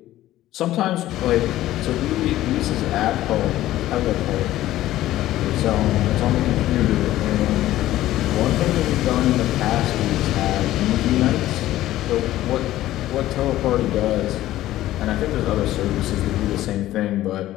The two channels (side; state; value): right; quieter; 14.6 dB